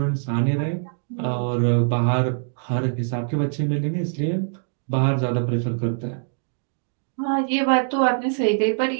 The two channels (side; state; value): left; silent; digital silence